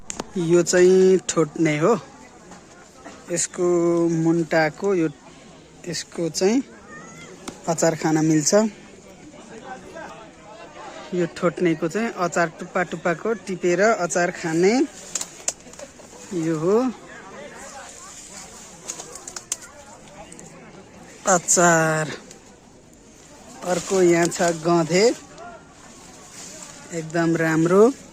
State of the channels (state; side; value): identical; both; correlation 1.00